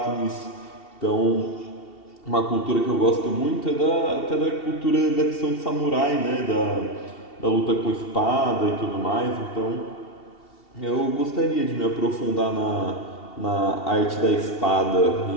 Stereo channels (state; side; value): late; right; 2.7 ms